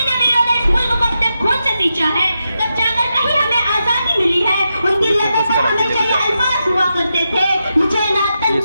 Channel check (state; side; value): inverted; both; correlation -0.87